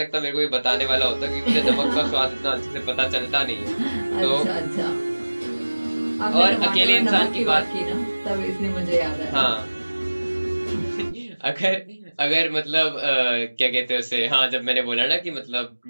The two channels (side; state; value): both; inverted; correlation -1.00